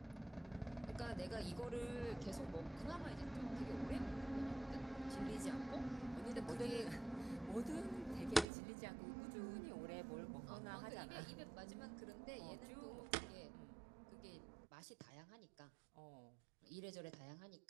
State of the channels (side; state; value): left; drops out; at 8.5 s